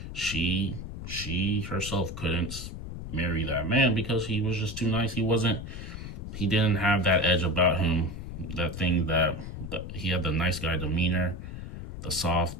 she herself couldn't marry that man because he was just too nice. He wasn't he didn't have that edge about him, that thing that he had, the nice guy demeanor, the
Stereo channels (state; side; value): noise; left; rumble, 8 dB below the sound